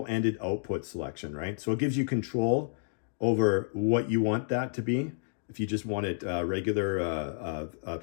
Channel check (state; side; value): silent; right; digital silence